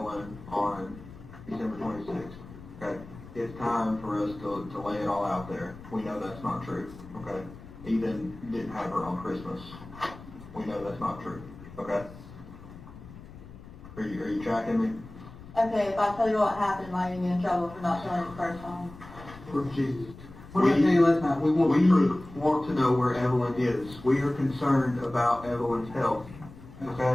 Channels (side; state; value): left; noise; rumble, 17 dB below the sound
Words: on December 26th. Okay. It's time for us to lay it all out there. We know that's not true. Okay. Ethan didn't have her on Christmas. We know that's not true. Okay. Are you tracking me? Okay, if I tell you what happened, am I going to get in trouble for not telling you the first time? For Jesus. What did I tell you last night? We want to know where Evelyn is. We are concerned about Evelyn's health.